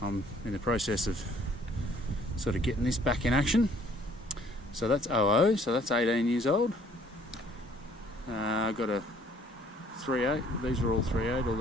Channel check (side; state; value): both; normal; correlation 0.59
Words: I'm in the process of sort of getting this back in action. So that's 00, so that's 18 years old. I've got a 3.8, these are all 3.8, all